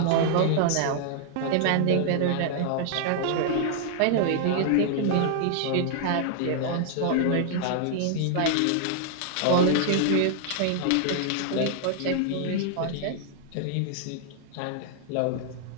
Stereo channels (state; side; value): different; both; correlation -0.01